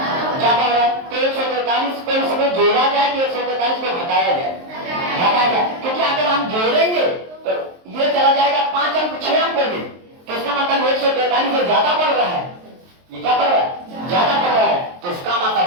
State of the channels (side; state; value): left; late; 23 ms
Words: हो रहा है। तो 143 को इसमें जोड़ा जाए कि 143 को घटाया जाए, घटाया जाए, क्योंकि अगर हम जोड़ेंगे तो ये चला जाएगा 5 अंक 6 अंक में, तो इसका मतलब 143 से ज्यादा पड़ रहा है, ये क्या पड़ रहा है ज्यादा पड़ रहा है। तो इसका मतलब